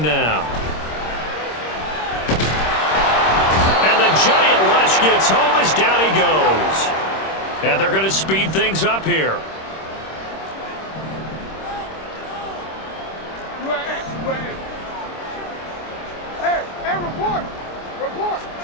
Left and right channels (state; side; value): late; right; 26 ms